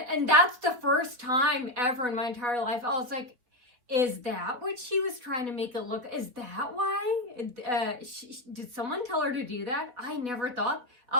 that's the first time ever in my entire life. I was like, is that what she was trying to make it look? Is that why? Did someone tell her to do that? I never thought.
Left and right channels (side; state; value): left; late; 4.1 ms